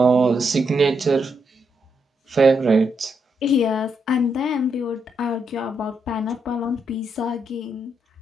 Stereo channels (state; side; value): normal; both; correlation 0.80